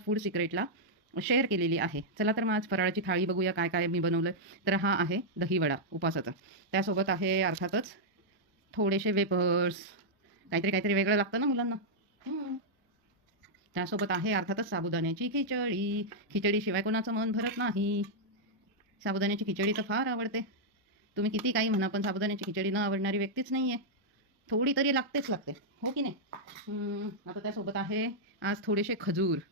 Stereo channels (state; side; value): normal; both; correlation -0.06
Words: फूड सिक्रेटला शेअर केलेली आहे. चला तर मग आज फराळाची थाळी बघूया काय काय मी बनवलं. तर हा आहे दहीवडा उपासाचा. त्यासोबत आहे अर्थातच थोडेसे वेपर्स, काहीतरी काहीतरी वेगळं लागतं ना मुलांना. त्यासोबत आहे अर्थातच साबुदाण्याची खिचडी. खिचडीशिवाय कोणाचं मन भरत नाही. साबुदाण्याची खिचडी तर फार आवडते. तुम्ही किती काही म्हणा पण साबुदाण्याची खिचडी न आवडणारी व्यक्तीच नाही आहे. थोडी तरी लागतेच लागते, हो की नाही. आता त्यासोबत आहे आज थोडेसे खजूर.